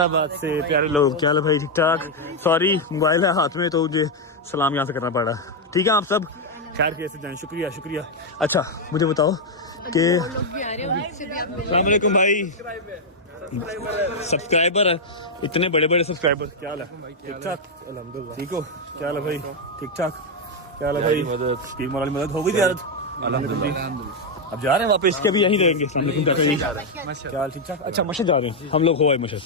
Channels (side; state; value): both; normal; correlation 0.01